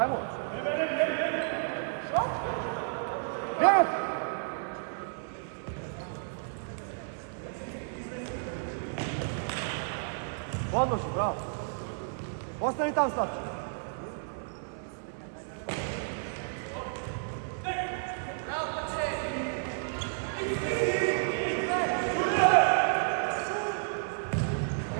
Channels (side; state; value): left; silent; 57 dB below the other